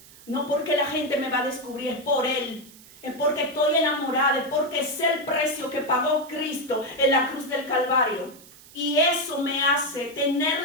No porque la gente me va a descubrir, es por Él. Es porque estoy enamorada, es porque sé el precio que pagó Cristo en la cruz del Calvario. Y eso me hace tener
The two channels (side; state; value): right; noise; hiss, 22 dB below the sound